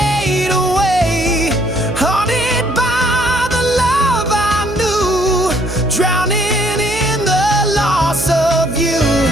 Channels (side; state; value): right; noise; hum, 9 dB below the sound